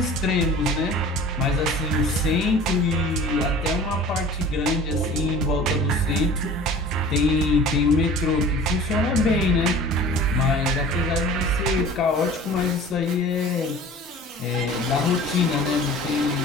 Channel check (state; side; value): normal; both; correlation 0.43